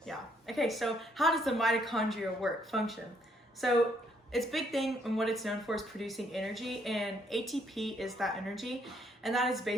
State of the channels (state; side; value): normal; both; correlation 0.69